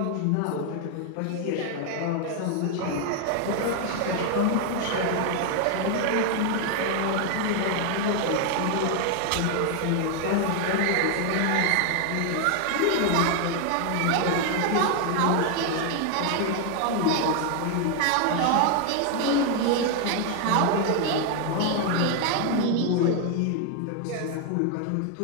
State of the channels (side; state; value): both; different; correlation 0.01